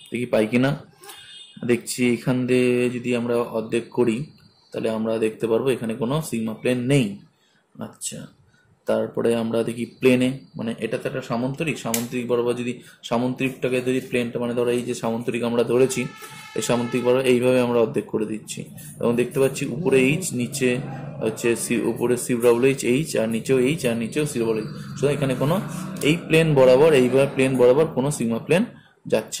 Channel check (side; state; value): both; identical; correlation 1.00